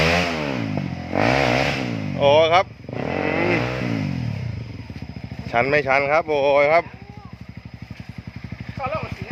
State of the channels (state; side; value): identical; both; correlation 1.00